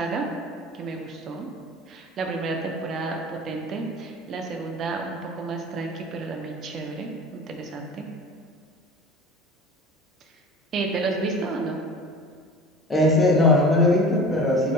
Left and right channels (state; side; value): normal; both; correlation 0.38